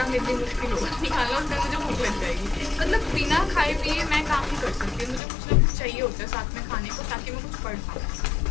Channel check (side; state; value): right; drops out; at 5.2 s